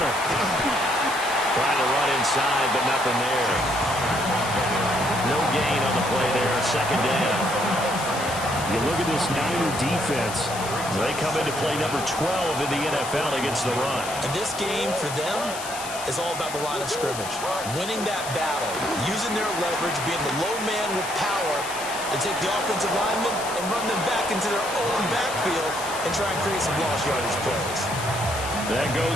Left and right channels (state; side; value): noise; left; hiss, 9 dB below the sound